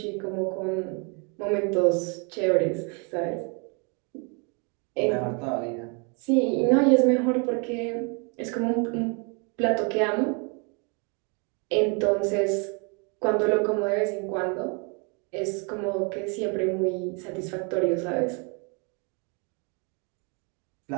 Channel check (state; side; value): quieter; left; 34.7 dB